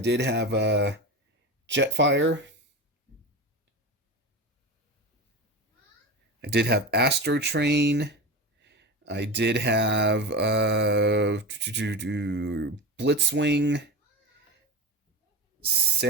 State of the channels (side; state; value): both; normal; correlation 0.24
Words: have Jetfire. I did have Astro Train. I did have Blitzwing,